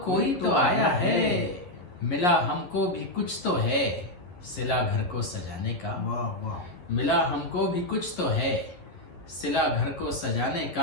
कोई तो आया है। मिला हमको भी कुछ तो है, सिला घर को सजाने का। वाह वाह। मिला हमको भी कुछ तो है, सिला घर को सजाने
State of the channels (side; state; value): right; late; 11 ms